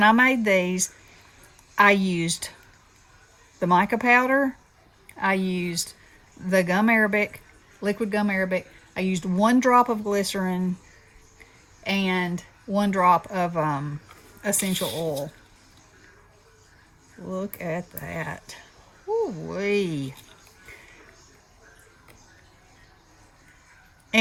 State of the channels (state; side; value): identical; both; correlation 1.00